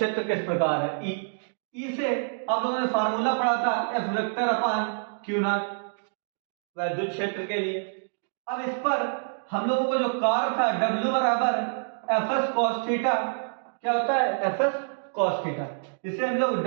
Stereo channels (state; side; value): silent; left; digital silence